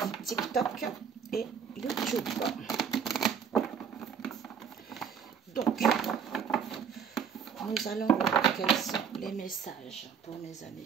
TikTok et YouTube? Donc, nous allons voir quels sont les messages pour mes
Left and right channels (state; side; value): quieter; left; 7.1 dB